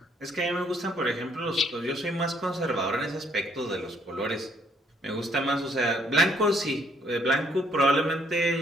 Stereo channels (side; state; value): both; normal; correlation 0.67